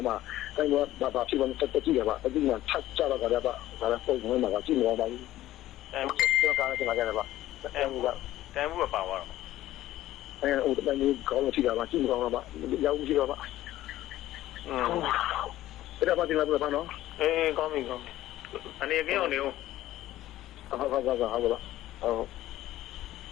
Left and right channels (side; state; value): right; quieter; 14.7 dB